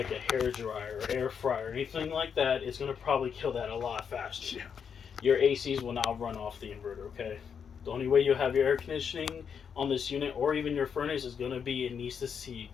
a hair dryer or air fryer or anything like that, it's going to probably kill that a lot faster. Yeah. Your ACs will now run off the inverter, okay? The only way you'll have your air conditioning on this unit or even your furnace is going to be it needs to see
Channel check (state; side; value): quieter; right; 7.0 dB